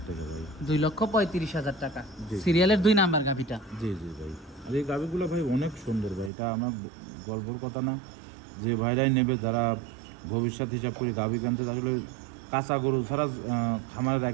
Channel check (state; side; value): drops out; left; at 6.3 s